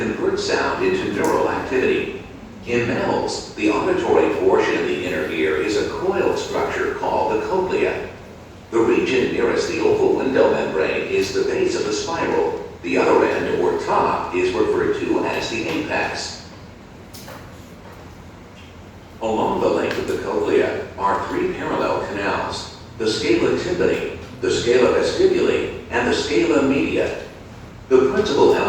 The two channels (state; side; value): identical; both; correlation 1.00